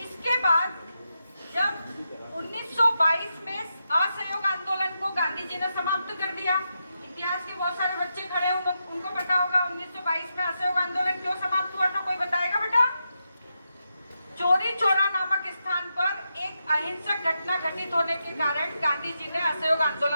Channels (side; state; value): both; inverted; correlation -0.86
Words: इसके बाद जब 1922 में असहयोग आंदोलन को गांधी जी ने समाप्त कर दिया, इतिहास के बहुत सारे बच्चे खड़े हैं, उनको पता होगा 1922 में असहयोग आंदोलन क्यों समाप्त हुआ था, कोई बताएगा बेटा? चोरी चौरा नामक स्थान पर एक अहिंसक घटना घटित होने के कारण गांधी जी ने असहयोग